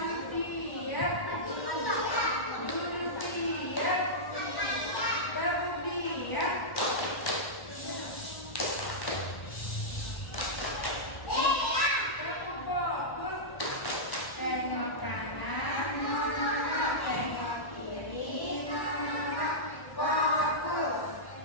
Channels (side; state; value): right; late; 1.1 ms